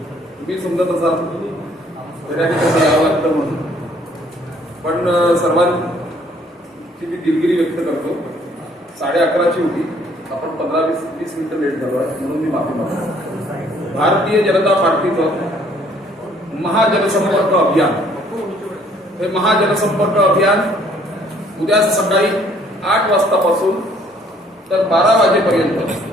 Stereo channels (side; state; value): both; normal; correlation 0.61